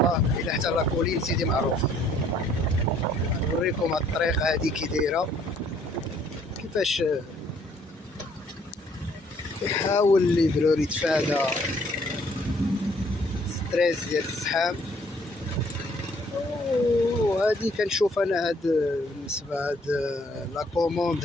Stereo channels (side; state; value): both; normal; correlation 0.63